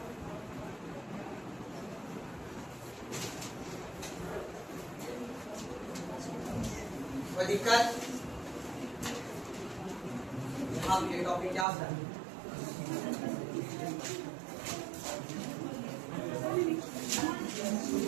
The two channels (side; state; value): left; drops out; at 11.7 s